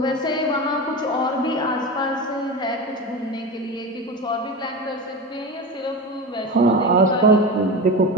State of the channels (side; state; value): both; normal; correlation 0.25